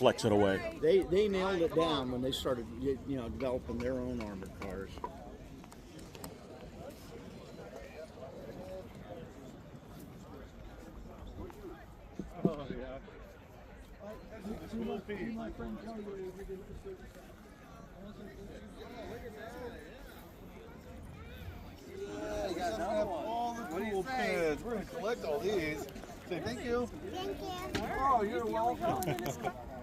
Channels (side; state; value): both; identical; correlation 1.00